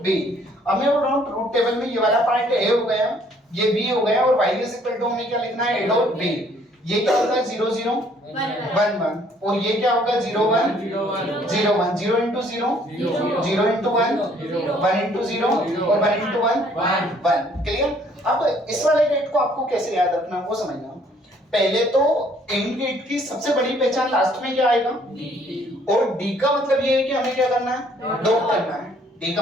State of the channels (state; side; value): normal; both; correlation 0.62